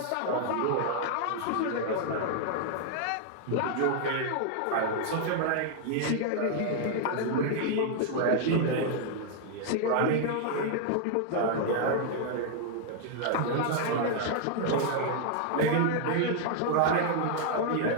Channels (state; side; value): different; both; correlation 0.00